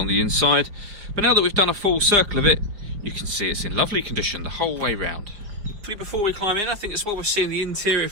the inside. But now that we've done a full circle of it, you can see it's in lovely condition the whole way round. Before we climb in, I think it's what we're seeing the interior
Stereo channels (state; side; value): late; left; 5.2 ms